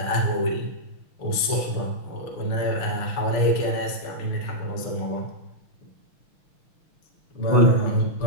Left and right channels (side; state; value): right; late; 6.8 ms